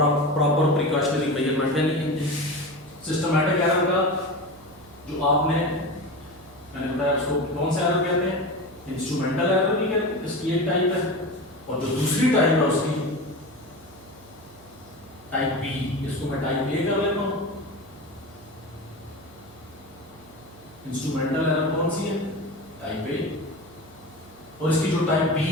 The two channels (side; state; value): right; noise; hum, 23 dB below the sound